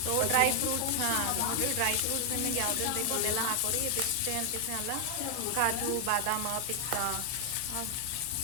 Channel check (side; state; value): both; different; correlation 0.00